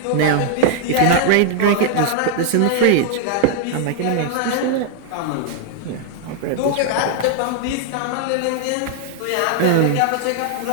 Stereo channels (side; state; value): both; different; correlation -0.01